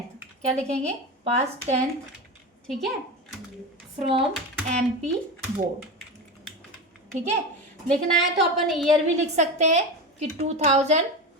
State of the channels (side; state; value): both; normal; correlation 0.22